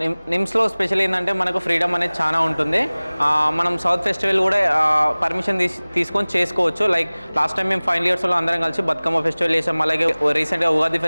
నిమ్స్లో స్పెషల్ ఏంటంటే మనకు ఫ్రీడమ్ అనేది చాలా ఉంటుంది. మనం సౌత్ ఫెస్టివల్ కూడా పర్మిషన్ తీసుకొని చేసుకోవచ్చు. లైక్ లాస్ట్ టైం మేము ఫైనల్ ఇయర్స్లో అందరం కలిసి బతుకమ్మ ఫెస్టివల్ చేసాం. అలాగే రీసెంట్గా ఉగాది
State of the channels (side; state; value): both; inverted; correlation -1.00